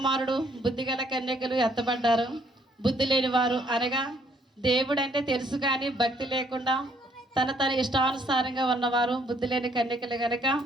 బుద్ధిగల కన్యకలు ఎత్తబడ్డారు. బుద్ధి లేని వారు అనగా దేవుడంటే తెలుసు కానీ భక్తి లేకుండా తన ఇష్టానుసారంగా ఉన్నవారు బుద్ధి లేని కన్యకలు కనుక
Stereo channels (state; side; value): normal; both; correlation 0.67